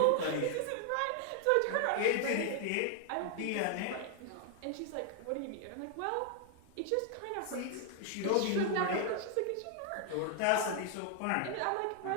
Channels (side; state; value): both; different; correlation 0.00